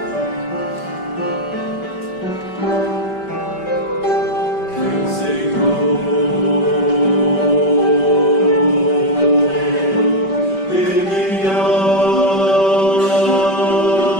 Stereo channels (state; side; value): late; right; 5.2 ms